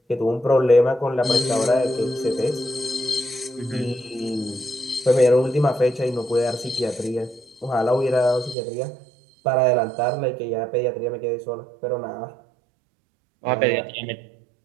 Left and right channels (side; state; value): left; drops out; at 8.6 s